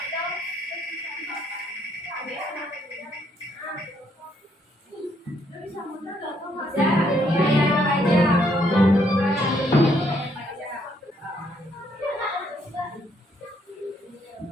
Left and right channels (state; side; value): normal; both; correlation 0.71